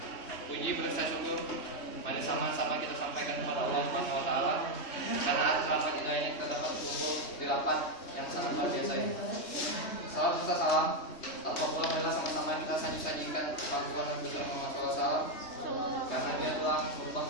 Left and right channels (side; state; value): right; late; 3.2 ms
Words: Puji berasa syukur mari sama-sama kita sampaikan kepada Allah Subhanahu wa taala karena atas rahmat hidayahnya kita dapat berkumpul di rapat yang sangat luar biasa ini. Salam serta salam tanpa pula marilah sama-sama kita sajikan kepangkuan Nabi Muhammad SAW karena dia telah merubah